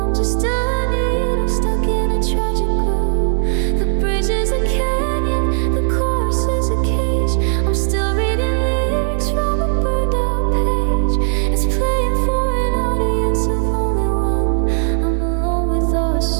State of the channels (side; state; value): left; silent; digital silence